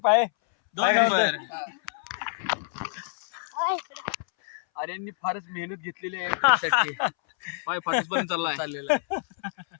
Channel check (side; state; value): right; silent; 60 dB below the other